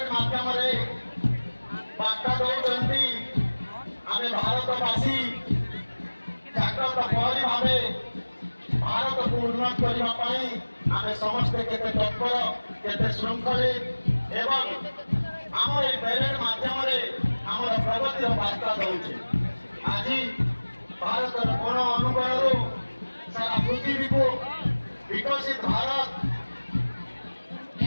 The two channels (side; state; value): both; inverted; correlation -1.00